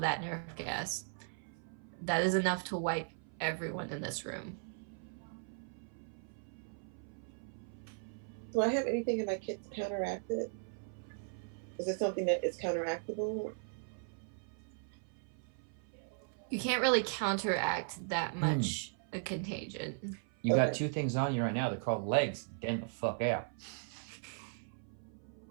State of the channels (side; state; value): left; silent; 53 dB below the other